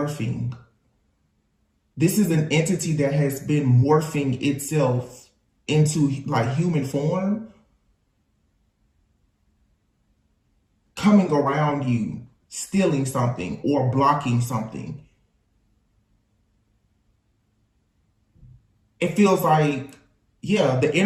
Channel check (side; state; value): both; identical; correlation 1.00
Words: This is an entity that has been morphing itself into like human form, coming around you, stealing something or blocking something. It feels like, yeah, the